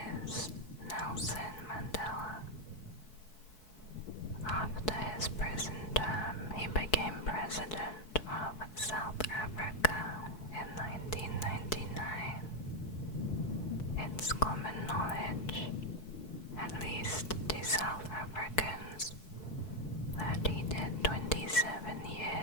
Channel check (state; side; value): late; right; 4.7 ms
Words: is Nelson Mandela. After his prison term, he became president of South Africa in 1999. It's common knowledge, at least to South Africans, that he did 27